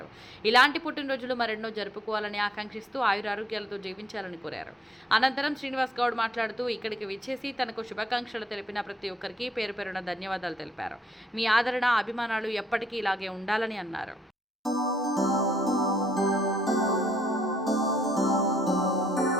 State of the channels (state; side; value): normal; both; correlation 0.71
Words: ఇలాంటి పుట్టినరోజులు మరెన్నో జరుపుకోవాలని ఆకాంక్షిస్తూ ఆయురారోగ్యాలతో జీవించాలని కోరారు. అనంతరం శ్రీనివాస్ గౌడ్ మాట్లాడుతూ ఇక్కడికి విచ్చేసి తనకు శుభాకాంక్షలు తెలిపిన ప్రతి ఒక్కరికి పేరు పేరున ధన్యవాదాలు తెలిపారు. మీ ఆదరణ, అభిమానాలు ఎప్పటికీ ఇలాగే ఉండాలని అన్నారు.